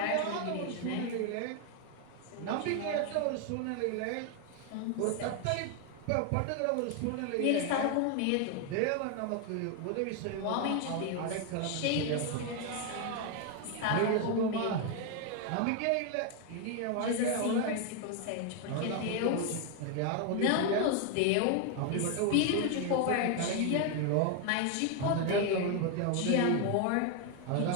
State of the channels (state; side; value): different; both; correlation 0.01